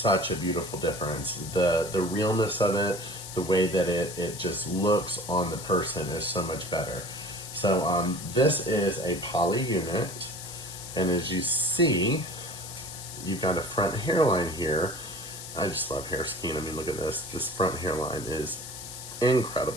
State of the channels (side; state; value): left; noise; hiss, 11 dB below the sound